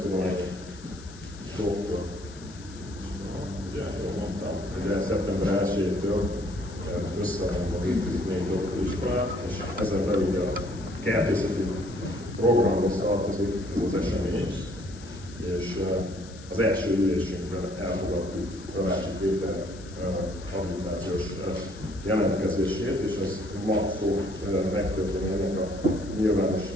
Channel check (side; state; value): left; noise; hiss, 20 dB below the sound